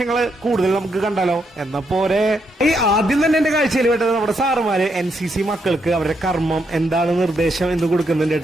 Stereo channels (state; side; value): normal; both; correlation 0.78